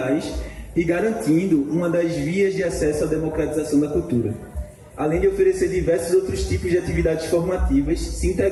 e garantindo uma das vias de acesso à democratização da cultura, além de oferecer diversos outros tipos de atividades formativas, se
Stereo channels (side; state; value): both; identical; correlation 1.00